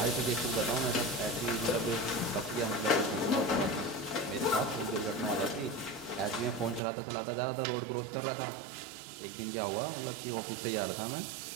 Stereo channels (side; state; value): left; drops out; at 6.8 s